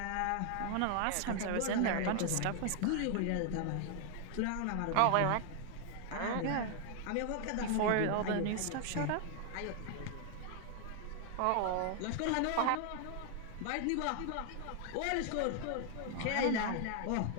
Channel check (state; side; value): different; both; correlation 0.00